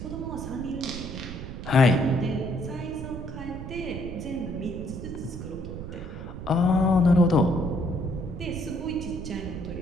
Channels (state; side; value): noise; right; rumble, 9 dB below the sound